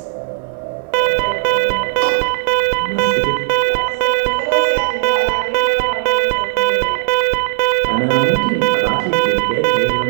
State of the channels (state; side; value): silent; left; 69 dB below the other